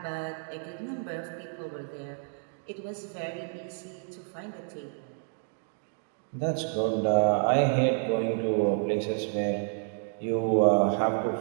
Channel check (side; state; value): left; silent; 58 dB below the other